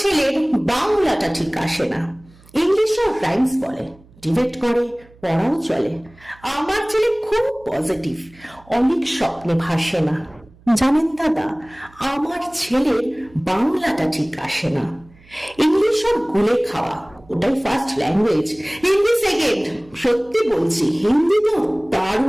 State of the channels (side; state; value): right; noise; hum, 27 dB below the sound